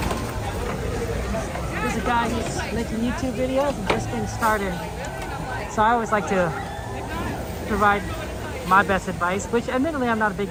There's a guy who's making YouTube videos and just getting started. So I always like to provide my best advice, which admittedly I'm not a big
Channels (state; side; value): identical; both; correlation 1.00